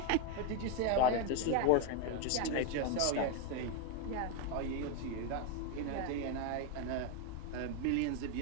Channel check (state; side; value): different; both; correlation 0.01